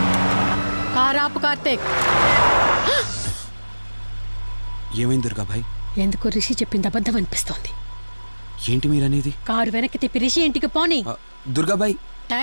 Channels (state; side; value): inverted; both; correlation -1.00